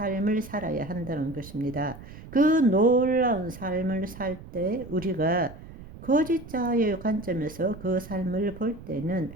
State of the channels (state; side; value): noise; right; rumble, 16 dB below the sound